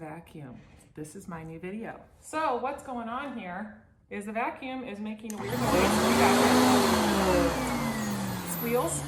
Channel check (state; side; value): identical; both; correlation 1.00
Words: This is my new video. So what's going on here is the vacuum is making a weird noise. You got it. Squeals,